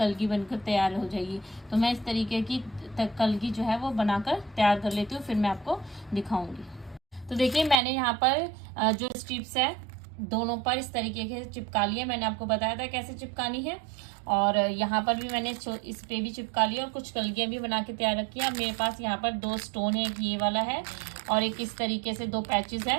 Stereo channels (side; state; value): left; drops out; at 7.8 s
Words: बनकर तैयार हो जाएगी। तो मैं इस तरीके की कलगी जो है वो बनाकर तैयार कर लेती हूँ, फिर मैं आपको दिखाऊंगी। तो देखिए मैंने यहाँ पर जो स्ट्रिप्स है दोनों पर इस तरीके से चिपका लिया। मैंने आपको बताया था कैसे चिपकानी है, और यहाँ पर भी मैंने इस पे भी चिपका लिया और कुछ कलगियाँ भी बना के तैयार रखी है। अब मेरे पास यहाँ पर 2 स्टोन है, एक ये वाला है और एक इस तरीके से 2 पैचेस